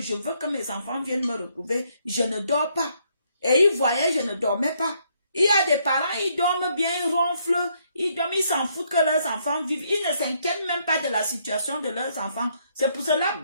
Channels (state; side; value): inverted; both; correlation -0.72